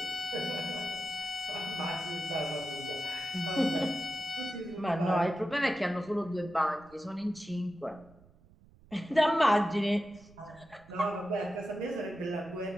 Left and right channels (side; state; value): right; noise; rumble, 25 dB below the sound